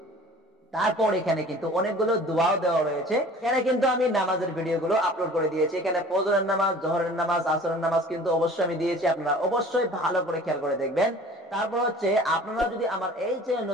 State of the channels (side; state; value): both; normal; correlation 0.46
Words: তারপর এখানে কিন্তু অনেকগুলো দোয়াও দেওয়া রয়েছে। এখানে কিন্তু আমি নামাজের ভিডিওগুলো আপলোড করে দিয়েছি। এখানে ফজরের নামাজ, জোহরের নামাজ, আসরের নামাজ কিন্তু অবশ্যই আমি দিয়েছি, আপনারা অবশ্যই ভালো করে খেয়াল করে দেখবেন। তারপর হচ্ছে আপনারা যদি আমার এই চ্যানেল